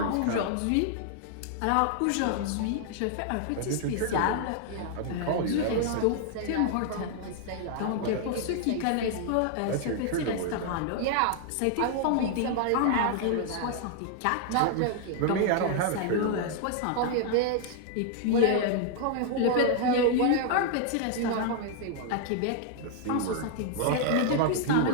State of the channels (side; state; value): both; different; correlation 0.00